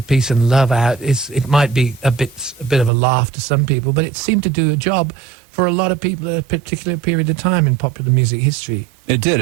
peace and love out it might be a bit of a laugh to some people, but it seemed to do a job for a lot of people at a particular period of time in popular music history. It did.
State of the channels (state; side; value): drops out; left; at 2.9 s